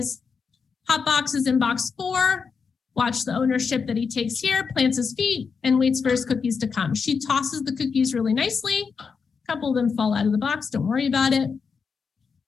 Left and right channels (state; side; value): quieter; right; 5.6 dB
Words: Hot box is in box 4. Watch the ownership that he takes here, plants his feet, and waits for his cookies to come. She tosses the cookies really nicely. A couple of them fall out of the box. Don't worry about it.